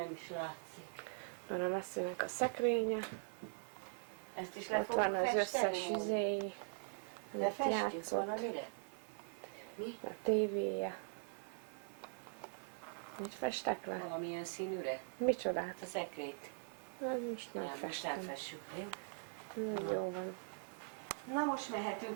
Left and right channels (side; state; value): left; silent; digital silence